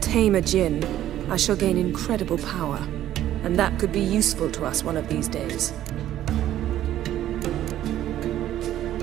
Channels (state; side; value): quieter; left; 12.5 dB